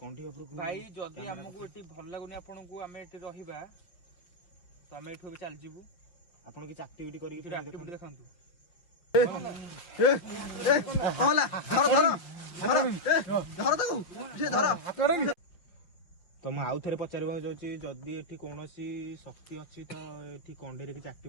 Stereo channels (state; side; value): late; right; 5.8 ms